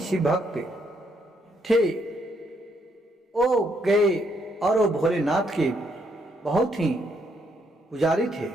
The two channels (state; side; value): normal; both; correlation 0.74